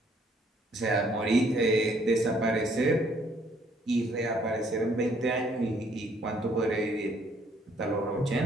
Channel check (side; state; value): both; normal; correlation 0.65